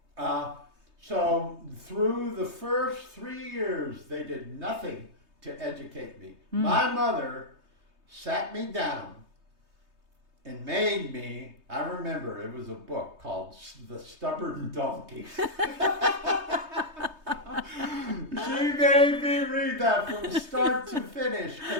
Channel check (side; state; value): left; late; 3.2 ms